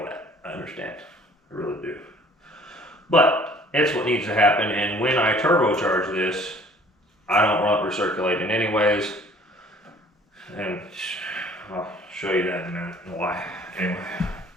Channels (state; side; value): normal; both; correlation 0.54